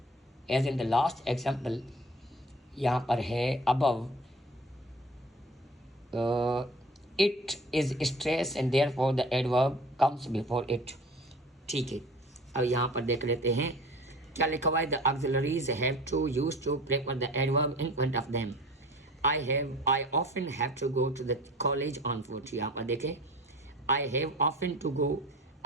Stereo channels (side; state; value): both; normal; correlation 0.43